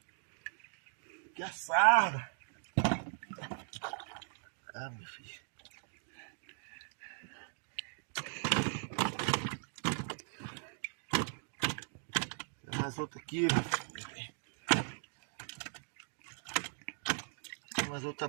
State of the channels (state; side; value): silent; left; 52 dB below the other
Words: Que assada. Ah, meu filho. Tem mais outra aqui. Tem mais outra